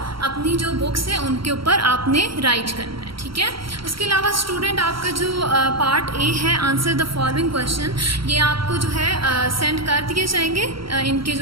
अपनी जो बुक्स हैं उनके ऊपर आपने राइट करना है. ठीक है, उसके अलावा स्टूडेंट आपका जो पार्ट ए है, आंसर द फॉलोइंग क्वेश्चन, ये आपको जो है सेंड कर दिए जाएंगे. इनके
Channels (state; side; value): late; left; 0.74 ms